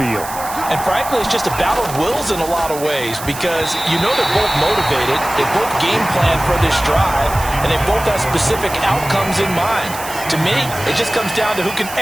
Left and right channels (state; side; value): noise; right; hiss, 12 dB below the sound